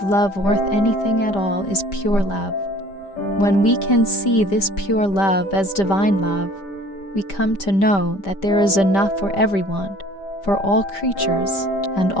love worth anything at all is pure love. When we can see this pure love as divine love, we come to know that there is enough for everyone, for all creatures and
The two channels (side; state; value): right; late; 5.1 ms